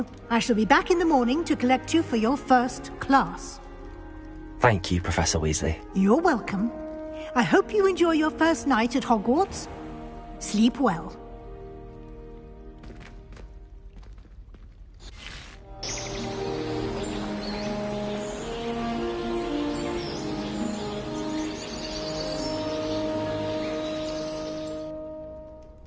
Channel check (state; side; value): identical; both; correlation 1.00